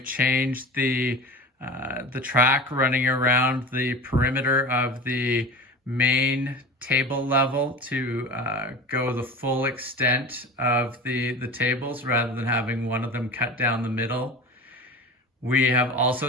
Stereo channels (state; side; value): normal; both; correlation 0.33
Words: changed the track running around the perimeter of the main table level to go the full extent of the tables rather than having one of them cut down the middle. We have